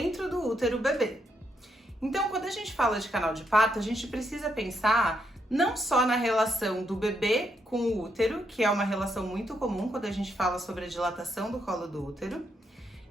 do útero o bebê. Então, quando a gente fala de canal de parto, a gente precisa pensar não só na relação do bebê com o útero, que é uma relação muito comum quando a gente fala sobre a dilatação do colo do útero,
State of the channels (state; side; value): normal; both; correlation 0.78